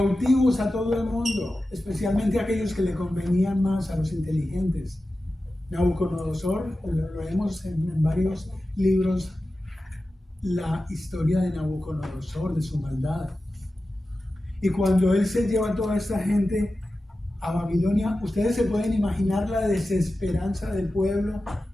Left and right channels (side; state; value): both; normal; correlation 0.94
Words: a todo el mundo, especialmente a aquellos que le convenían más, a los inteligentes. Nabucodonosor, lo vemos en varios libros, la historia de Nabucodonosor, de su maldad. Y cuando él se lleva a toda esta gente a Babilonia, ustedes se pueden imaginar la desesperanza del pueblo,